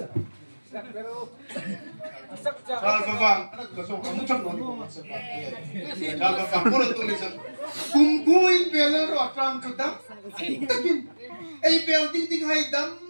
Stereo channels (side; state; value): both; inverted; correlation -1.00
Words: Pero Kalbabang, anak ko so kamutan no sa pati. Kalbabang puro tulis sa kungkuin belaro atram chutam. Ay building ding haidam